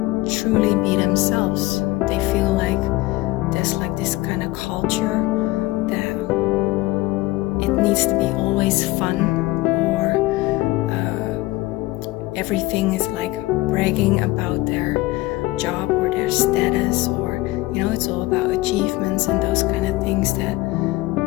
truly be themselves. They feel there's this kind of culture that it needs to be always fun. Everything is bragging about their job or their status, or it's all about achievements and those kind of things, that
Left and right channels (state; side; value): quieter; right; 19.4 dB